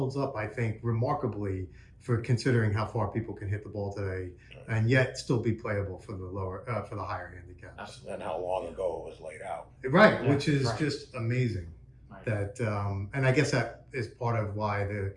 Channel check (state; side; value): identical; both; correlation 1.00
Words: up, I think, remarkably for considering how far people can hit the ball today, and yet still be playable for the higher handicaps. Absolutely. And how long ago it was laid out. Right, Yeah, which is right. just amazing. Right. That and I guess that is part of why the